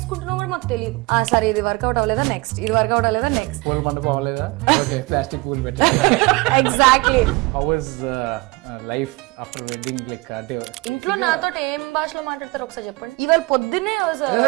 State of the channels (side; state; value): left; quieter; 23.4 dB